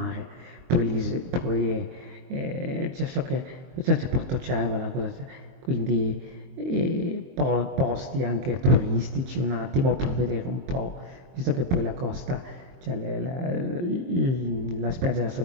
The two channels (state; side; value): late; left; 23 ms